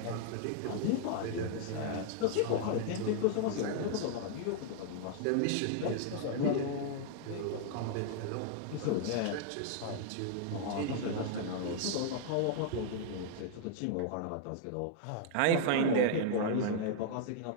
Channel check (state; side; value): different; both; correlation -0.01